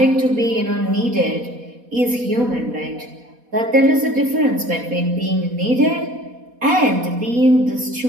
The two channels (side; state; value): left; late; 4.1 ms